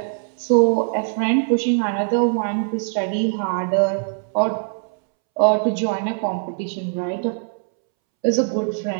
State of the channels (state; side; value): silent; left; 65 dB below the other